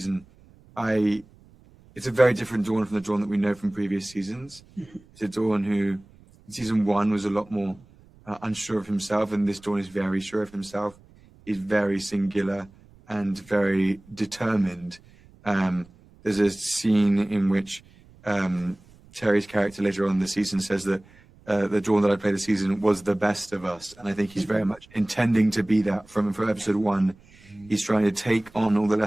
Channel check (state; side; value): noise; right; rumble, 26 dB below the sound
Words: it's a very different Dawn from the Dawn that we know from previous seasons. It's a Dawn who, in season 1, was a lot more unsure of himself, and this Dawn is very sure of himself. He's very singular and very determined. There's a scene in which Terry's character later on in the season says that the Dawn that I played this season was the best of us. And I think he's very much intending to be that from episode 1. He's trying to take on all the